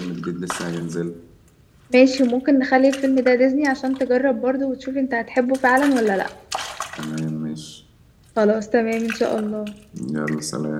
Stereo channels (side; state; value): both; identical; correlation 1.00